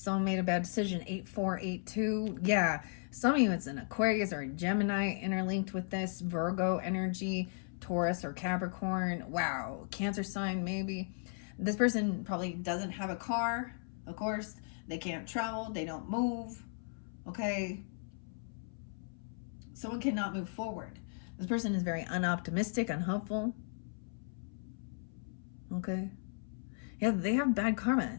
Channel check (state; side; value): silent; right; 54 dB below the other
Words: made a bad decision. 8482. Yeah, some of you, it's an Aquarius or a Gemini interlinked with this. Virgo energy, Taurus or Capricorn. Wow, Cancer sign maybe. This person probably doesn't have a car, of course. They can't travel. They don't move. Okay. Someone cannot move forward. This person is very unoptimistic, unhopeful. Okay. Yeah, they have bad